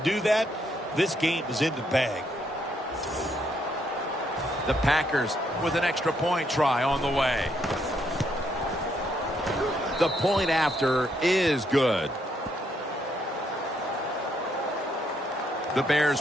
that, this game is in the bag. The Packers with an extra point try on the way. The point after is good. The Bears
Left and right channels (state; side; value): normal; both; correlation 0.74